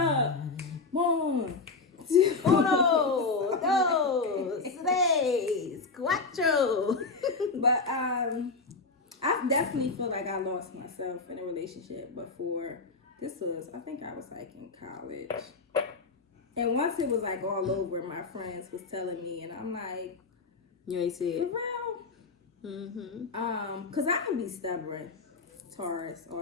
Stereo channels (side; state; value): right; quieter; 4.1 dB